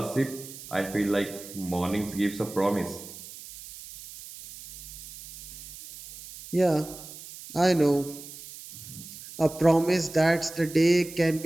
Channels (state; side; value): noise; right; hiss, 15 dB below the sound